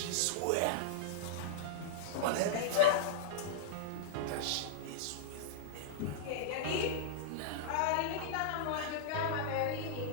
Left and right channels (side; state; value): both; different; correlation -0.02